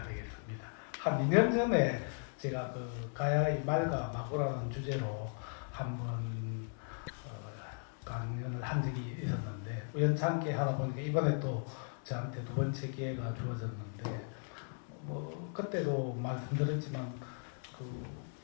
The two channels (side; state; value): right; silent; 53 dB below the other